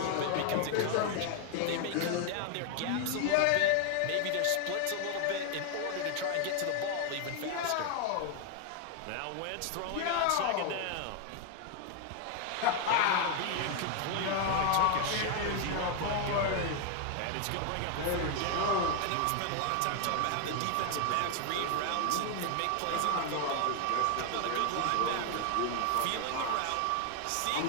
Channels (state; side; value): different; both; correlation 0.00